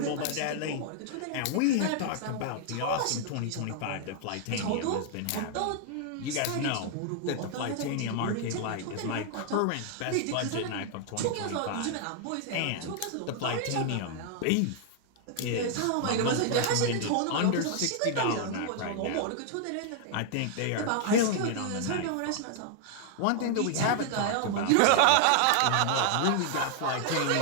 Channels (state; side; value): different; both; correlation 0.00